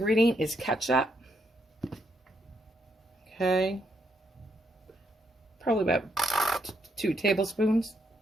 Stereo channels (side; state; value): both; normal; correlation 0.76